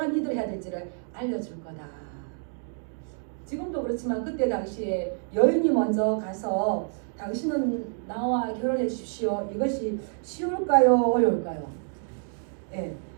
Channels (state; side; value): silent; left; 57 dB below the other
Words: 일을 해야 될지를 알려줄 거다. 지금도 그렇지만 그때 당시에 여인이 먼저 가서 당신은 나와 결혼해 주십시오. 이것이 쉬울까요? 어려울까요? 예,